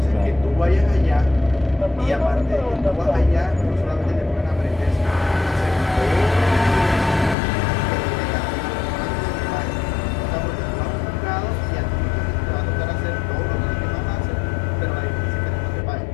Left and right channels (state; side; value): drops out; right; at 7.4 s